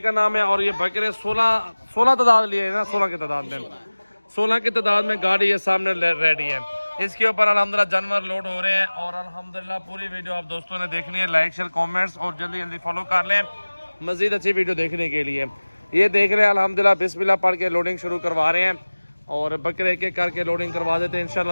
नाम है। और ये बकरे 16 तादाद लिए है ना, 16 की तादाद में, 16 की तादाद में गाड़ी ये सामने रेडी है। इसके ऊपर अल्हम्दुलिल्लाह जानवर लोड हो रहे हैं और अल्हम्दुलिल्लाह पूरी वीडियो आप दोस्तों ने देखनी है। लाइक शेयर कमेंट्स और जल्दी जल्दी फॉलो कर लें मजीद अच्छी वीडियो देखने के लिए। ये देख रहे हैं अल्हम्दुलिल्लाह बिस्मिल्लाह पढ़ के लोडिंग शुरू करवा रहे हैं और बकरे एक एक करके लोडिंग करवा देते हैं।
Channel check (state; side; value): inverted; both; correlation -1.00